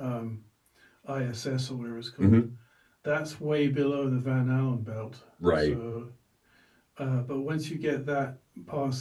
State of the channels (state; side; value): identical; both; correlation 1.00